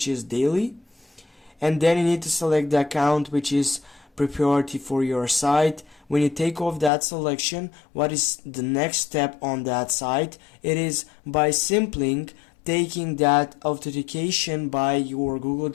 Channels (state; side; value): drops out; right; at 6.9 s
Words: is daily, and then you need to select the account, which is priority for your site. When you take off that selection, what is the next step on that site? It is by simply taking that authentication by your Google